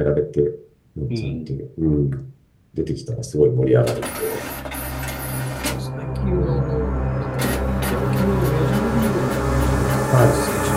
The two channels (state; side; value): identical; both; correlation 1.00